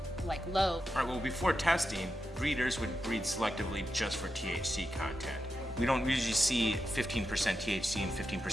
low? All right, well, before testing, breeders would breed selectively just for THC content. We don't usually see 15% THC and 15%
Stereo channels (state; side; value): normal; both; correlation 0.88